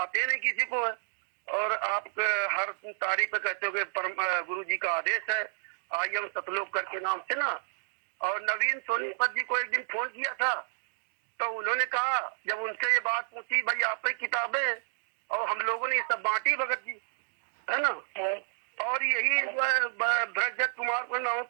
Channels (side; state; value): left; silent; digital silence